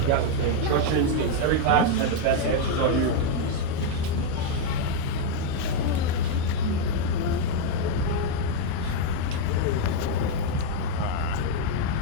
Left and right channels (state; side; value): different; both; correlation 0.01